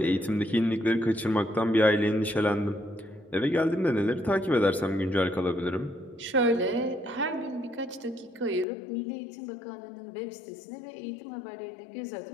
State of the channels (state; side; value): drops out; right; at 8.7 s